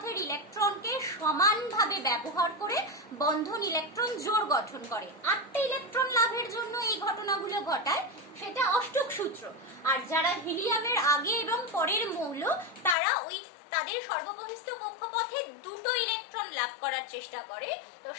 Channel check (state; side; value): drops out; right; at 13.0 s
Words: ইলেকট্রনকে সমানভাবে ব্যবহার করে বন্ধন ইলেকট্রন জোড় গঠন করে। 8টি ইলেকট্রন লাভের জন্য এই ঘটনাগুলো ঘটায়, সেটা অষ্টক সূত্র। আর যারা হিলিয়ামের আগে এবং পরের মৌল, তারা তাদের সর্ববহিস্থ কক্ষপথে 2টো ইলেকট্রন লাভ করার চেষ্টা করে, তো